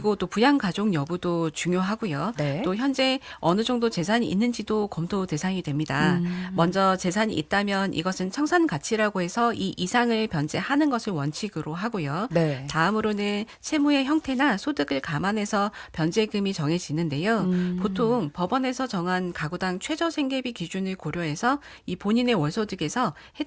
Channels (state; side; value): identical; both; correlation 1.00